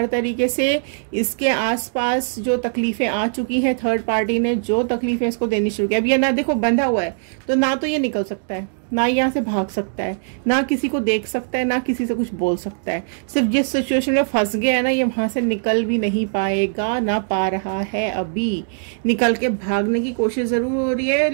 तरीके से। इसके आसपास जो तकलीफें आ चुकी हैं, थर्ड पार्टी ने जो तकलीफें इसको देनी शुरू की, अब ये ना देखो बंधा हुआ है तो ना तो ये निकल सकता है, ना यहाँ से भाग सकता है, ना किसी को देख सकता है, ना किसी से कुछ बोल सकता है। सिर्फ जिस सिचुएशन में फंस गया है ना, ये वहां से निकल भी नहीं पाएगा, ना पा रहा है अभी। निकल के भागने की कोशिश जरूर हो रही है,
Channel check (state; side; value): silent; left; digital silence